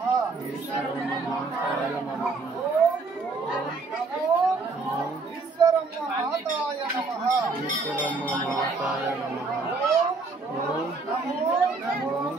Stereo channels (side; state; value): left; quieter; 4.0 dB